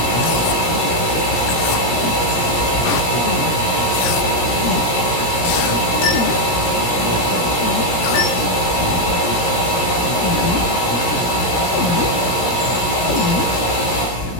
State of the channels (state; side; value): late; right; 17 ms